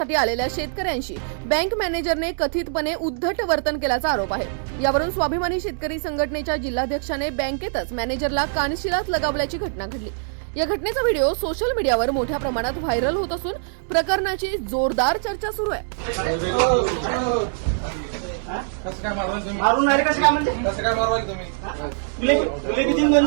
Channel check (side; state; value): left; silent; digital silence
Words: आलेल्या शेतकऱ्यांशी बँक मॅनेजरने कथितपणे उद्धट वर्तन केल्याचा आरोप आहे। यावरून स्वाभिमानी शेतकरी संघटनेच्या जिल्हाध्यक्षाने बँकेतच मॅनेजरला कानशिलात लगावल्याची घटना घडली। या घटनेचा व्हिडिओ सोशल मीडियावर मोठ्या प्रमाणात व्हायरल होत असून प्रकरणाची जोरदार चर्चा सुरू आहे। मारून नाही कसं काय म्हणते कसं काय मारवाल तुम्ही? तुले किती